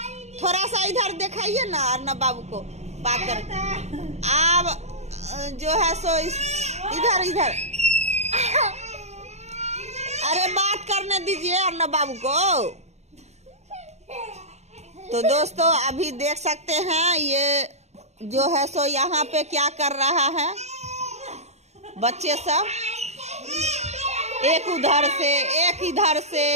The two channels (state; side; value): late; left; 0.32 ms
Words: थोड़ा सा इधर दिखाइए ना, अर्नब बाबू को बात कर। आप जो है सो इधर इधर, अरे बात करने दीजिए अर्नब बाबू को। तो दोस्तों अभी देख सकते हैं ये जो है सो यहाँ पे क्या कर रहा है बच्चे सब, एक उधर से एक इधर से।